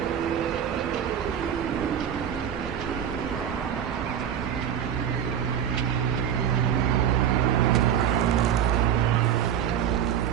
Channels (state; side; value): quieter; left; 9.2 dB